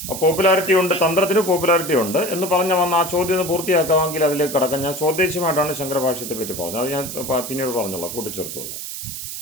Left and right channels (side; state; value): right; noise; hiss, 8 dB below the sound